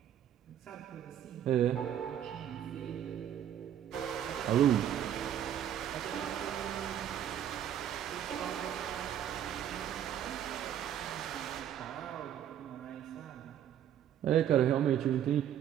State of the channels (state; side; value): quieter; left; 10.2 dB